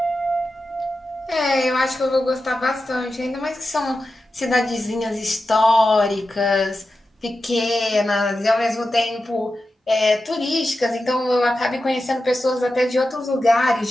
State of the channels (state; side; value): normal; both; correlation 0.91